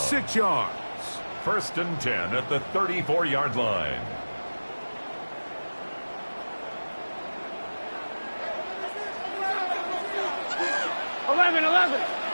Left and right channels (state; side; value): inverted; both; correlation -1.00